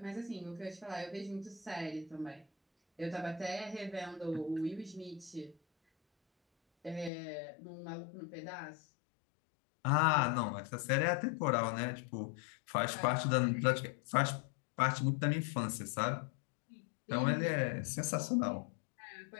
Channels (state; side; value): drops out; right; at 7.1 s